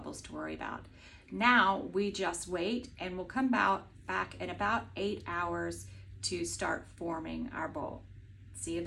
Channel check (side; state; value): both; identical; correlation 1.00